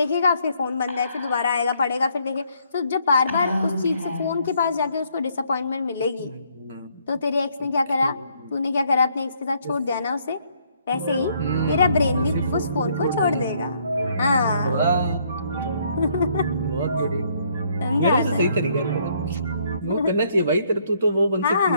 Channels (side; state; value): both; inverted; correlation -0.68